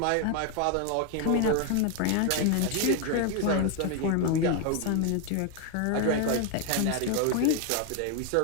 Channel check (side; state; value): both; different; correlation 0.01